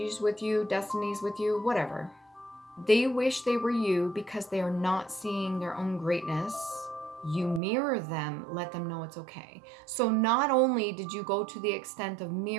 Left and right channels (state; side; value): drops out; left; at 7.6 s